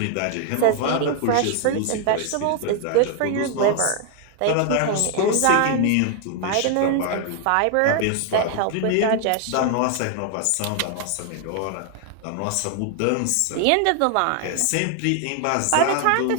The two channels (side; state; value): both; different; correlation 0.00